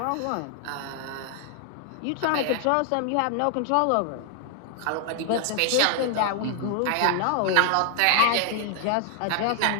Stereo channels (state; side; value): different; both; correlation 0.00